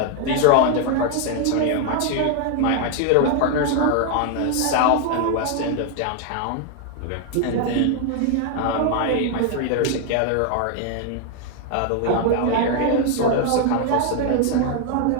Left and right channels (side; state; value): both; different; correlation 0.00